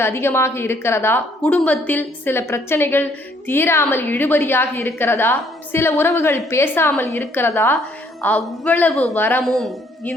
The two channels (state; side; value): normal; both; correlation 0.65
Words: அதிகமாக இருக்கிறதா, குடும்பத்தில் சில பிரச்சனைகள் தீராமல் இழுபறியாக இருக்கிறதா, சில உறவுகள் பேசாமல் இருக்கிறதா, அவ்வளவு வரமும்